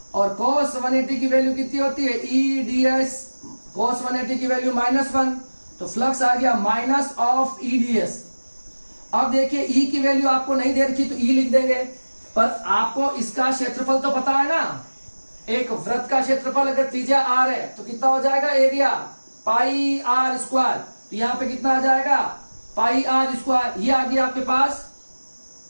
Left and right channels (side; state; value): both; inverted; correlation -1.00